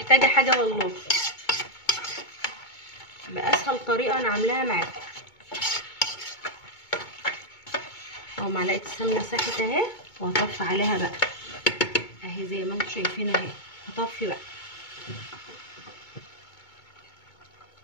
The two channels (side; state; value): right; late; 2.2 ms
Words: حاجه والله، باسهل طريقه انا عاملاها معاكم اهو. معلقه السمنه ساحت اهي، وهطفي عليها بقى اهي زي ما انتم شايفين اهي. هطفي بقى